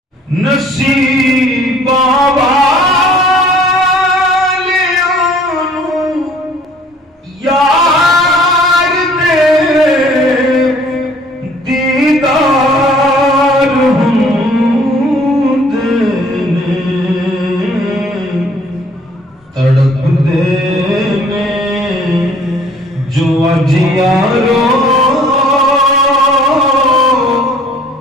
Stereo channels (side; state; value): both; normal; correlation 0.55